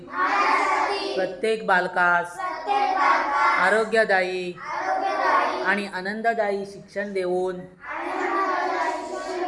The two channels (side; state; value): both; identical; correlation 1.00